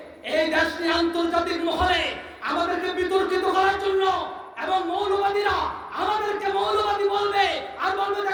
এই দেশ নিয়ে আন্তর্জাতিক মহলে আমাদেরকে বিতর্কিত করার জন্য, এবং মৌলবাদীরা আমাদেরকে মৌলবাদী বলবে আর বলবে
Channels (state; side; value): identical; both; correlation 1.00